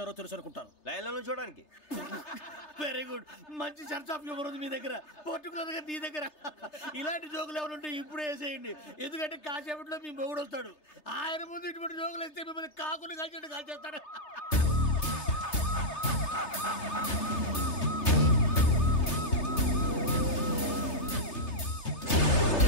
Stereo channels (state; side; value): late; right; 3.3 ms